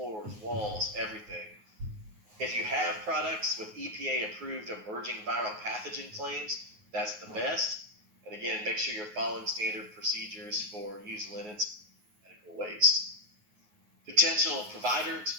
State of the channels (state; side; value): late; left; 9.5 ms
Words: walls, everything. If you have products with EPA-approved emerging viral pathogen claims, that's the best. And again, make sure you're following standard procedures for used linens and medical waste. Potential provider